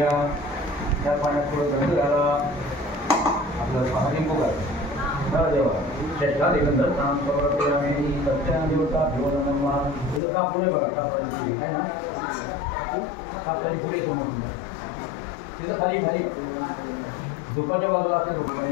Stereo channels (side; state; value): right; drops out; at 10.2 s